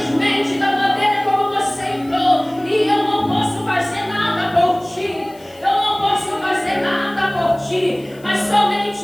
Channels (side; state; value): left; noise; hiss, 27 dB below the sound